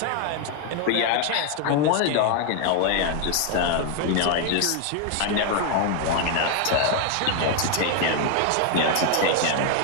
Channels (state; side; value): different; both; correlation 0.00